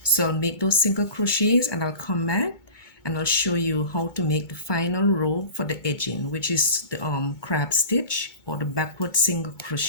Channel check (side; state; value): right; late; 2.2 ms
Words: So I'll make those single crochets and I'll come back and I'll show you how to make the final row for the edging, which is the crab stitch or the backward single